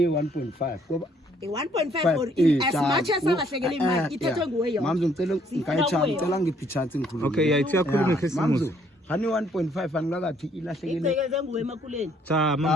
1.5 ngoba 1.5 or as much as alahlekele imali ithethwe nguwe yona mama ngicela ngicela ngiphi chance ngikhuluma okay yayithi yakhuluma ngesimuzi hani 1.5 angilakathi ilahlekele icekeze nguwe emakuleni cha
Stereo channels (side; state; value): both; normal; correlation 0.65